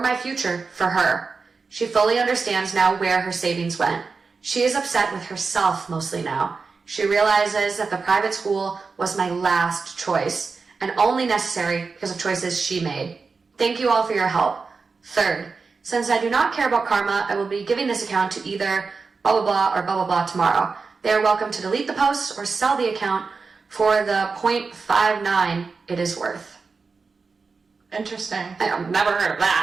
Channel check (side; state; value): left; quieter; 4.6 dB